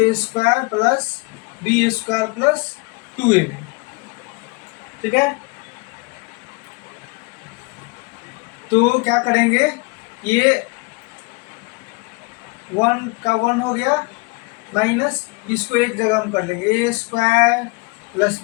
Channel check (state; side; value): quieter; right; 28.2 dB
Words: square plus B square plus 2ab, ठीक है। तो क्या करेंगे, ये 1 का 1 हो गया माइनस, इसको एक जगह हम कर लेंगे A square plus